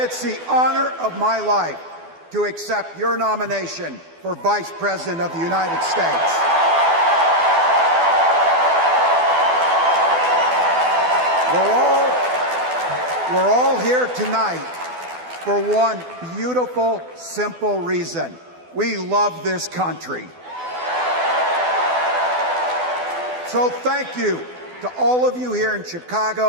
the honor of my life to accept your nomination for Vice President of the United States. We're all here tonight for one beautiful, simple reason. We love this country. So thank you to all of you here in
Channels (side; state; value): left; late; 12 ms